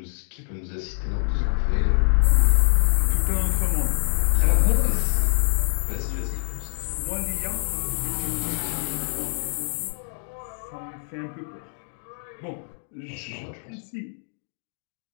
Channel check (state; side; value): silent; right; 62 dB below the other